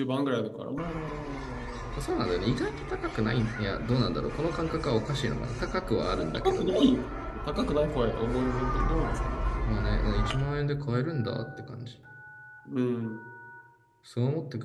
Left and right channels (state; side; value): identical; both; correlation 1.00